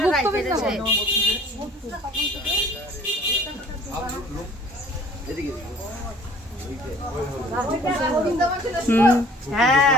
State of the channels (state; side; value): normal; both; correlation 0.53